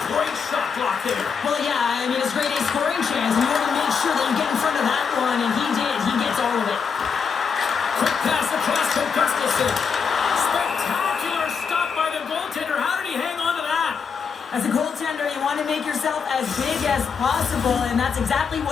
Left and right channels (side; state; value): right; quieter; 6.1 dB